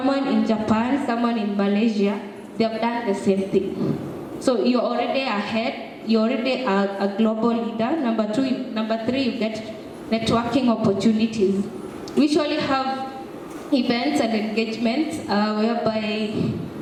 in Japan, someone in Malaysia, they have done the same thing. So you're already ahead you're already a global leader. Number three, you get networking opportunities. We usually have events and engagements whereby,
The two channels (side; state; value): both; identical; correlation 1.00